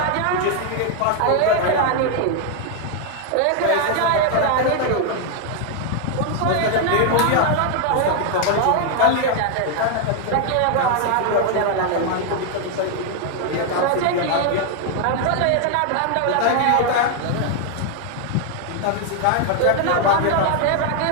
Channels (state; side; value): different; both; correlation 0.00